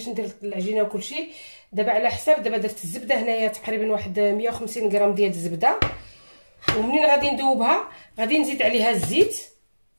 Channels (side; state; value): both; inverted; correlation -1.00